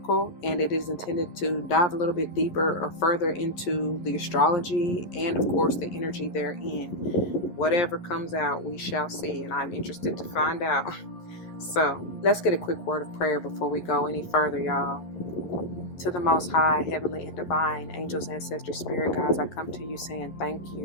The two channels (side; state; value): right; late; 11 ms